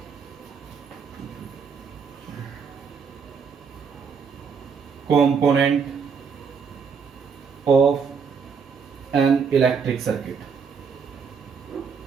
component of an electric circuit.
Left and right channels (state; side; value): quieter; left; 6.1 dB